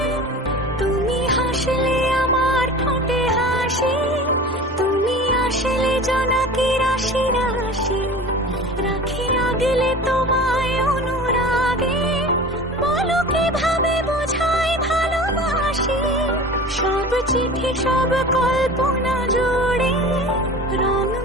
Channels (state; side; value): normal; both; correlation 0.37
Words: তুমি হাসলে আমার ঠোঁটে হাসি, তুমি আসলে জোনাকি রাশি রাশি, রাখি আগলে তোমায় অনুরাগে, বলো কিভাবে বোঝাই ভালোবাসি। সব চিঠি সব কল্পনা জুড়ে রং